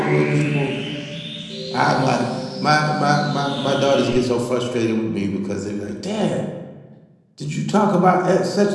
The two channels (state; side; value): identical; both; correlation 1.00